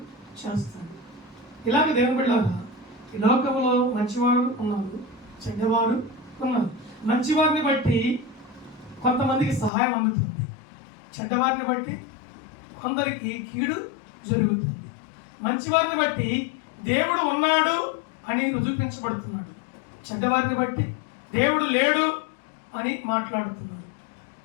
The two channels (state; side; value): drops out; right; at 9.7 s